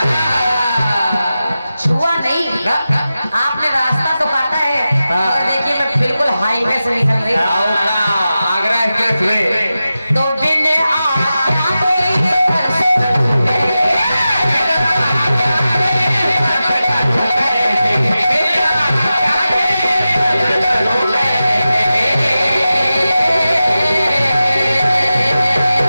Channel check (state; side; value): inverted; both; correlation -0.93